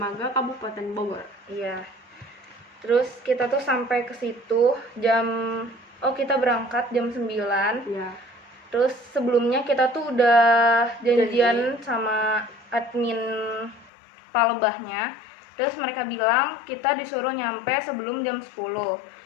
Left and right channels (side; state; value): right; drops out; at 13.9 s